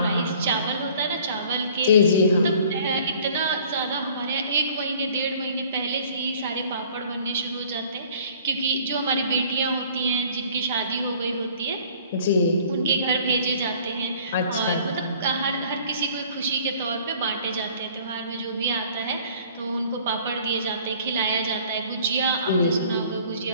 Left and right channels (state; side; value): inverted; both; correlation -0.53